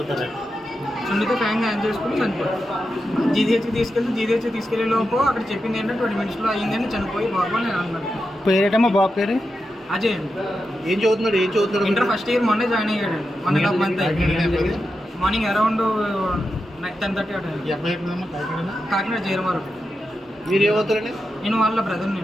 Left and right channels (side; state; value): both; normal; correlation 0.88